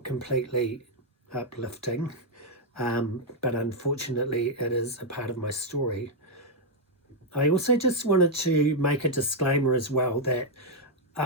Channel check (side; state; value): both; normal; correlation -0.02